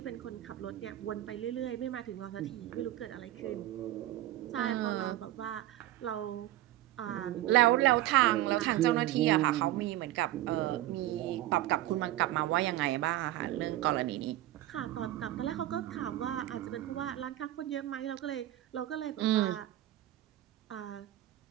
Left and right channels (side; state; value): left; quieter; 14.7 dB